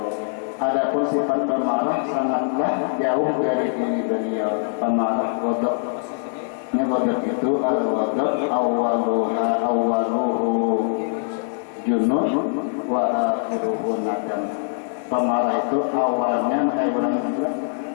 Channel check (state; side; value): silent; right; 64 dB below the other